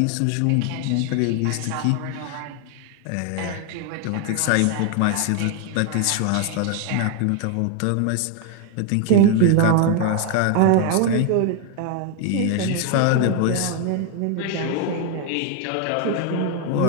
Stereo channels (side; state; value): both; different; correlation 0.00